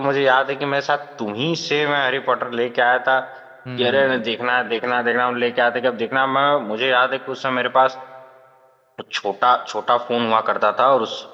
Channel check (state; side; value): identical; both; correlation 1.00